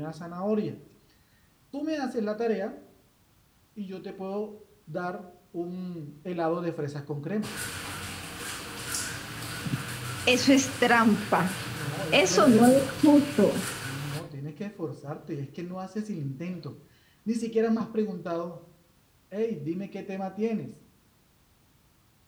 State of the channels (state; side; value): identical; both; correlation 1.00